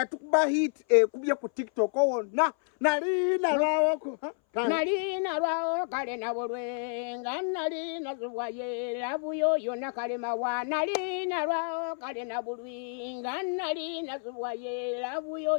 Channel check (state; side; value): silent; right; 58 dB below the other